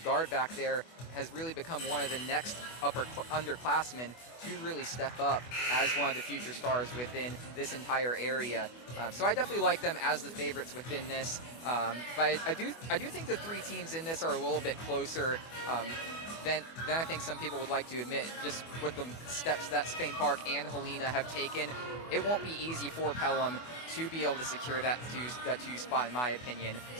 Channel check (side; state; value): right; late; 24 ms